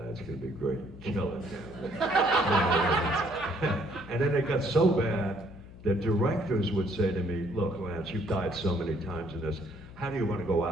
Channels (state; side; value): noise; left; hum, 17 dB below the sound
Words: it's gonna be great, kill it." And then it got so bad that directors would say to me, "Look, Lance, you've died so many times in this. How do you want to go